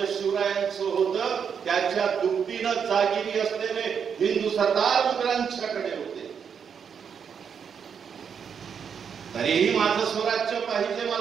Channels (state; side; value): quieter; left; 7.1 dB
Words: शिवरायांचं होतं त्याच्या दुपटीनं जागिरी असलेले हिंदू सरदार मुघलांच्याकडे होते. तरीही माझं स्वराज्य पाहिजे